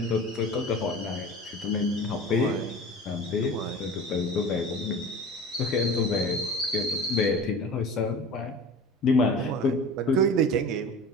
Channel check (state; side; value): normal; both; correlation 0.37